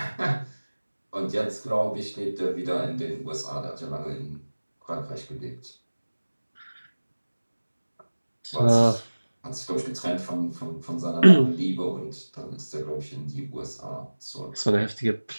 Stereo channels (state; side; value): inverted; both; correlation -1.00